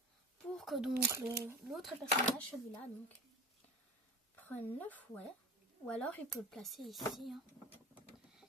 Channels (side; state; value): both; normal; correlation 0.32